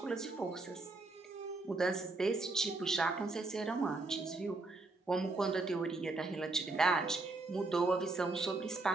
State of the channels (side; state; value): left; quieter; 3.3 dB